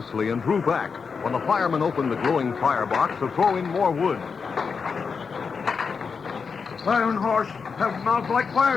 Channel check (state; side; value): quieter; right; 5.5 dB